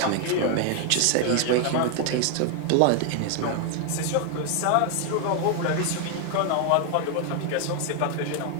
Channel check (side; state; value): both; different; correlation 0.00